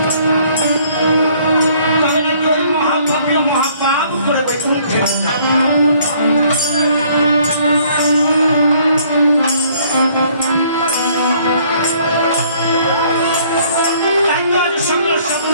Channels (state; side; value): inverted; both; correlation -0.61